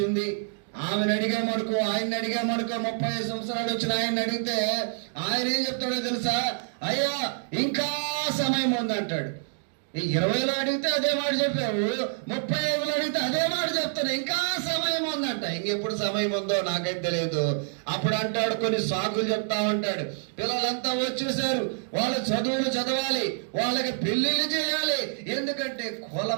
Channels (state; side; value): silent; left; digital silence